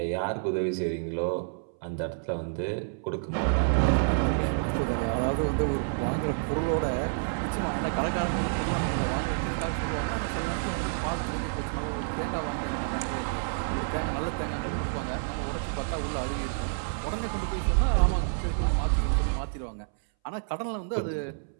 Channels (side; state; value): left; silent; 59 dB below the other